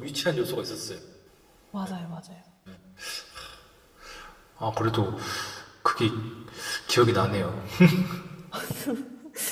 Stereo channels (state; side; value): identical; both; correlation 1.00